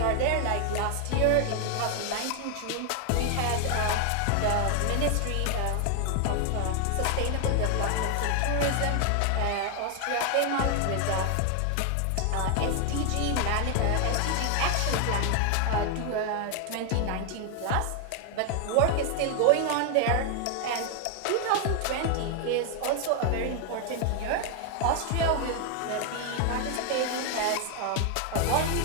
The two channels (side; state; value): both; different; correlation 0.00